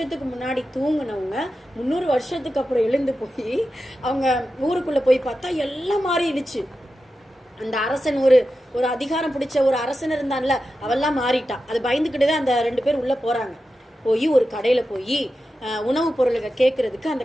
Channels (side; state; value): both; normal; correlation 0.91